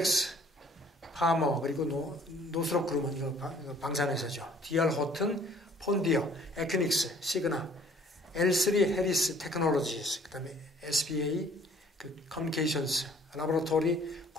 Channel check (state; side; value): normal; both; correlation 0.57